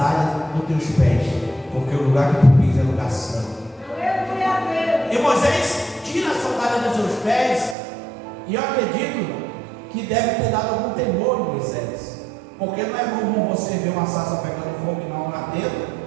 dos teus pés, porque o lugar que tu pisa é lugar santo. E Moisés tira a sandália dos seus pés, e eu acredito que deve ter dado algum temor em Moisés, porque não é comum você ver uma sarça pegando fogo e não ardendo,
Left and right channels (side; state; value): left; drops out; at 7.8 s